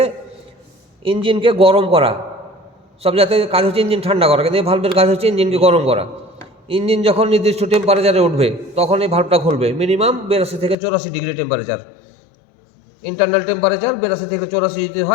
ইঞ্জিনকে গরম করা। সব জায়গায় কাজ হচ্ছে ইঞ্জিন ঠান্ডা করা, কিন্তু এই ভাল্বের কাজ হচ্ছে ইঞ্জিনকে গরম করা। ইঞ্জিন যখন নির্দিষ্ট টেম্পারেচারে উঠবে তখন এই ভাল্বটা খুলবে। মিনিমাম 82 থেকে 84 ডিগ্রি টেম্পারেচার, ইন্টারনাল টেম্পারেচার 82 থেকে 84 যদি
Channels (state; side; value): drops out; right; at 10.8 s